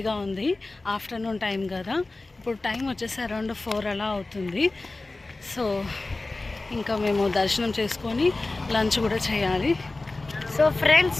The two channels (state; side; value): quieter; right; 3.2 dB